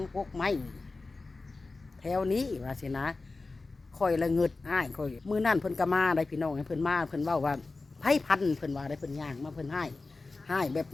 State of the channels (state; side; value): quieter; right; 3.6 dB